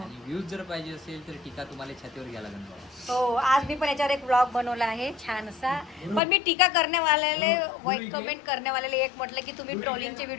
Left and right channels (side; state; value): right; drops out; at 6.2 s